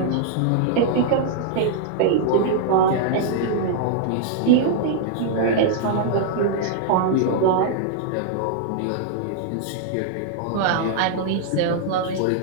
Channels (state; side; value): different; both; correlation -0.01